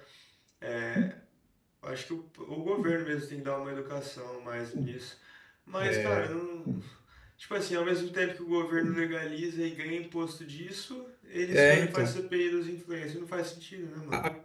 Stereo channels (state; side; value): identical; both; correlation 1.00